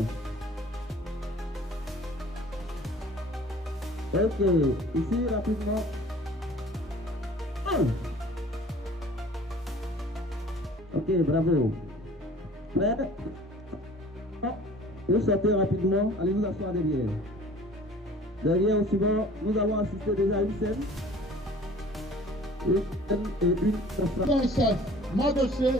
Ok. Ici, rapidement. 1. Ok, bravo. Prêt? Vous sortez rapidement. Allez vous asseoir derrière. Derrière, au suivant, nous avons assisté déjà à une scène. Mon chef, mon dossier,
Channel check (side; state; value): both; normal; correlation 0.48